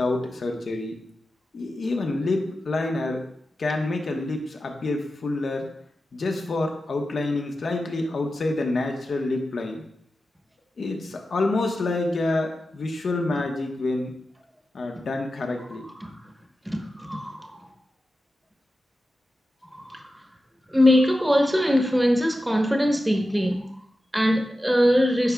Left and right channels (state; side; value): normal; both; correlation 0.92